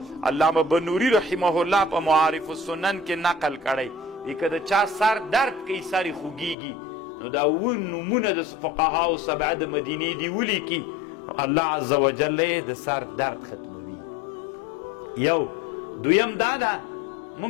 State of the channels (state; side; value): drops out; right; at 6.6 s